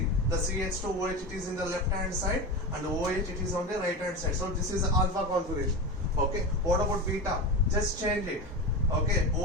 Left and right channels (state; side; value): normal; both; correlation 0.23